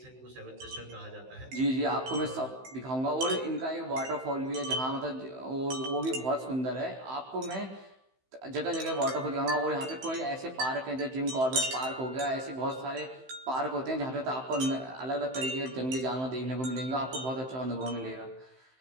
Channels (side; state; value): left; late; 15 ms